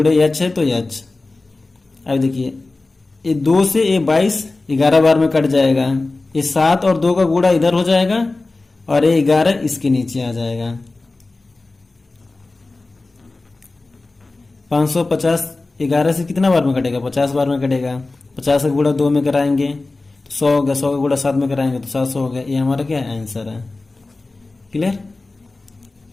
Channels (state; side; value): quieter; right; 3.3 dB